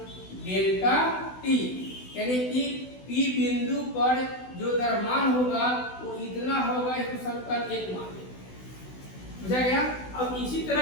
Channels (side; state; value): right; late; 16 ms